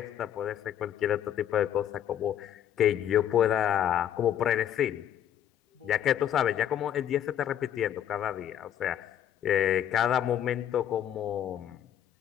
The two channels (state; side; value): quieter; right; 10.4 dB